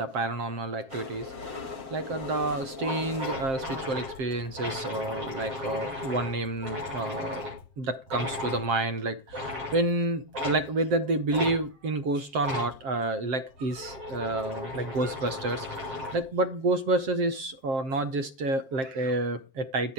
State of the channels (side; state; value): left; late; 7.5 ms